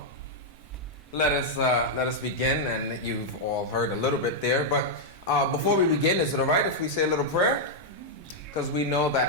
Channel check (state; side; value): normal; both; correlation -0.03